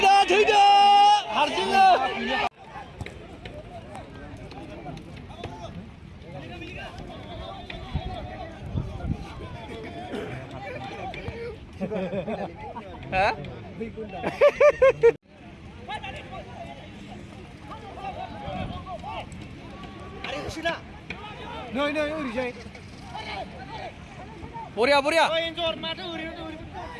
들다 하르진아 hả Nơi nơi uri jai. 보랴 보랴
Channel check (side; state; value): both; identical; correlation 1.00